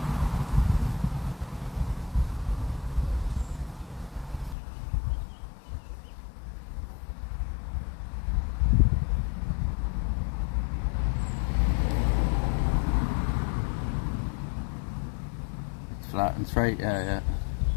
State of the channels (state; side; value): drops out; right; at 4.5 s